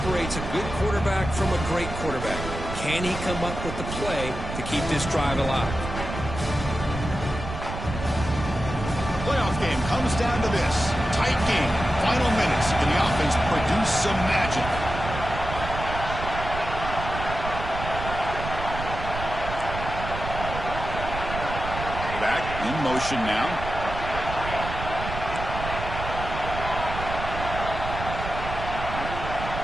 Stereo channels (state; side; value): noise; right; rumble, 7 dB below the sound